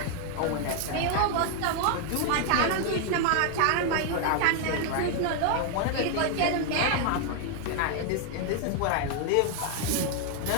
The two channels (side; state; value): both; different; correlation 0.00